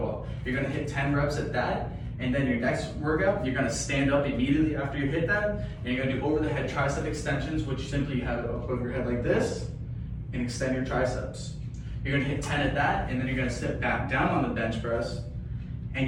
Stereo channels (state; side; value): identical; both; correlation 1.00